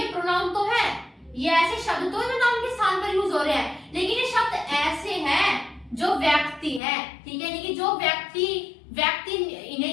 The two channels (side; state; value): right; drops out; at 6.8 s